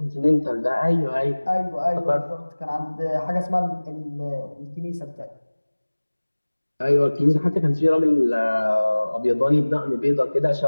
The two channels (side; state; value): both; inverted; correlation -1.00